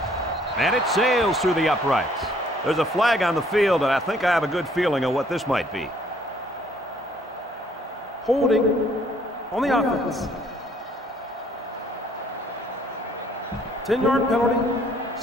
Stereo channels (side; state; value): both; normal; correlation 0.62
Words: and it sails through the uprights. There's a flag on the field, and I think I have a good feeling of what this might be. Holding on the offense. 10-yard penalty.